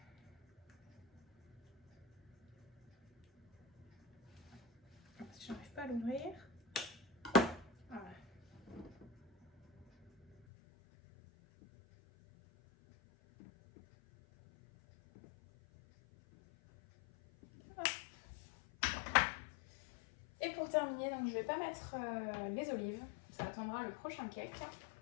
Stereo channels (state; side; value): drops out; right; at 10.5 s